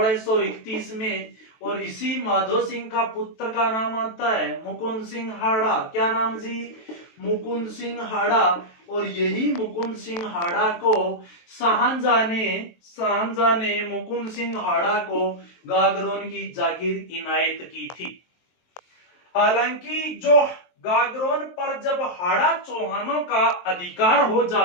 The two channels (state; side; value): late; right; 23 ms